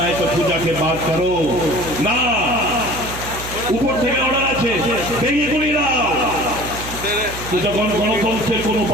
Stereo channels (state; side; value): noise; right; hum, 11 dB below the sound